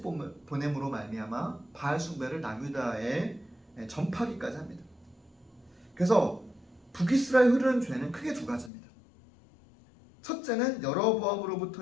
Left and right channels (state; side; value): drops out; right; at 8.7 s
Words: 보냄으로 말미암아 바알 숭배를 남유다에 전파하기까지 합니다. 그래서 북이스라엘 흐르는 죄는 크게 두 가지입니다. 첫째는